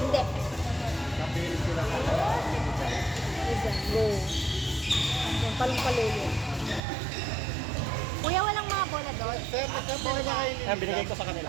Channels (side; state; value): left; drops out; at 6.8 s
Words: Kapilit sila sa Isa. Go. Yung palong-palulo. Kuya, walang mga bola doon? Sir, nagkapi na kayo ni Binigay ko sa kanila.